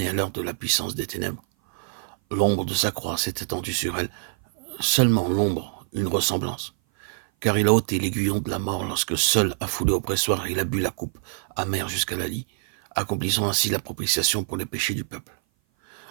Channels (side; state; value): left; silent; 57 dB below the other